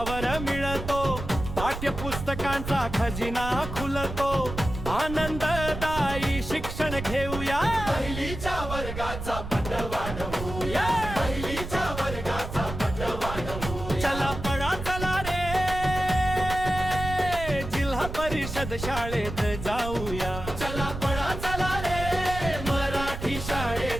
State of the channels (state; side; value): noise; right; rumble, 7 dB below the sound